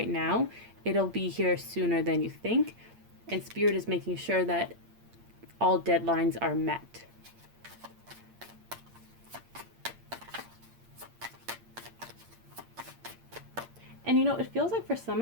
now, it'll be here sooner than you think. And Spirit is making sure that all deadlines are met. And you know, it feels like for some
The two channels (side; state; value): left; late; 8.7 ms